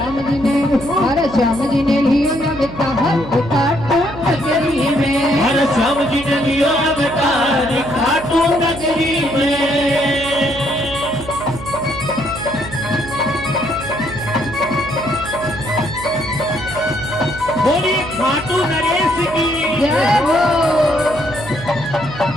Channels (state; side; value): noise; right; hum, 13 dB below the sound